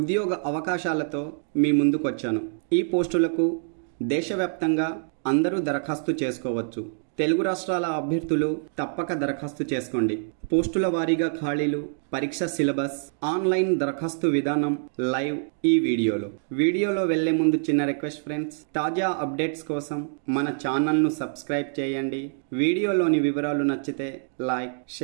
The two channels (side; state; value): left; silent; digital silence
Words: అవకాశాలతో మీ ముందుకు వచ్చాను. ఈ పోస్టులకు దేశవ్యాప్తంగా అందరూ దరఖాస్తు చేసుకోవచ్చు. తెలుగు రాష్ట్రాల అభ్యర్థులు తప్పక దరఖాస్తు చేసుకోండి. పోస్టుల వారీగా ఖాళీలు, పరీక్ష సిలబస్, ఆన్లైన్ దరఖాస్తు విధానం లైవ్ ఈ వీడియోలో వెళ్లే ముందు చిన్న రిక్వెస్ట్ ఫ్రెండ్స్, తాజా అప్డేట్స్ కోసం మన ఛానల్ను సబ్స్క్రైబ్ చేయండి. వీడియోలోని వివరాలు నచ్చితే లైక్,